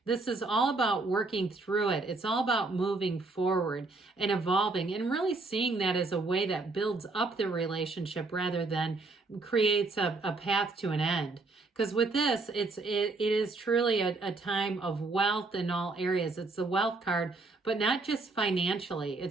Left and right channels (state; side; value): quieter; left; 3.5 dB